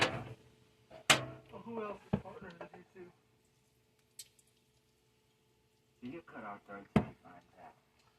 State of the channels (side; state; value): both; identical; correlation 1.00